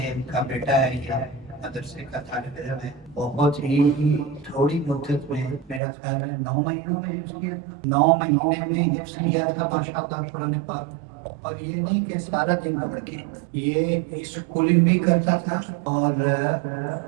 کا بیٹا ہے، یہ مدرسے کا طالب علم ہے۔ بہت ہی تھوڑی مدت میں، میرا خیال ہے 9 مہینوں میں حفظ کیا، 9 مہینے میں حفظ کیا تھا ماشاءاللہ قرآن پاک۔ اور یہ نہیں کہ سارا دن پڑھ کے، یہ اسکولنگ بھی کرتا تھا اور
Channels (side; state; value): left; drops out; at 5.8 s